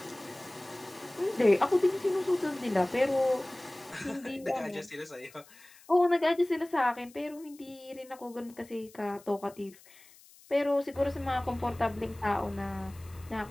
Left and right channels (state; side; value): noise; left; hiss, 24 dB below the sound